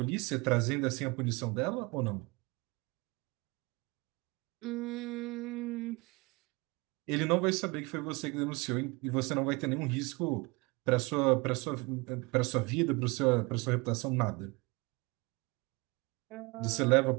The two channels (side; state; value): left; quieter; 26.4 dB